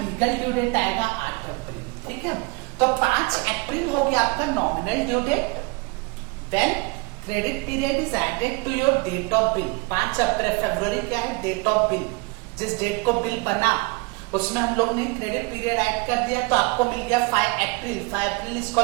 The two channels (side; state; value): left; quieter; 27.2 dB